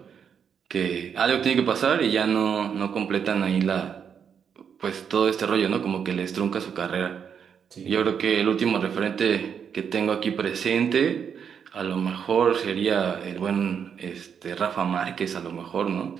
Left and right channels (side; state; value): left; quieter; 7.4 dB